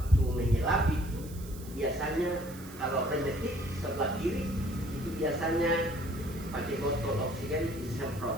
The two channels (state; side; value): noise; right; hiss, 18 dB below the sound